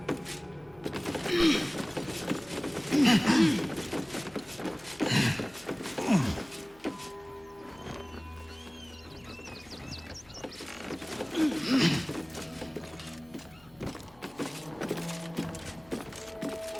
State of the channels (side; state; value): left; noise; hum, 27 dB below the sound